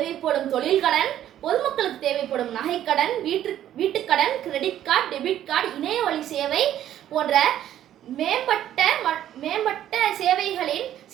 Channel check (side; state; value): left; quieter; 11.6 dB